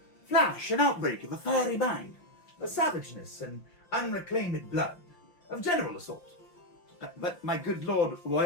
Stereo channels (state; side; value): late; right; 5.8 ms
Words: flash and outbreak of a fiery mind, the savageness and unreclaimed blood of general assault. But, my good lord,